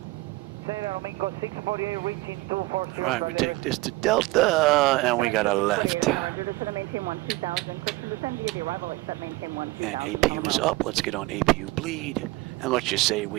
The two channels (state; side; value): quieter; left; 20.8 dB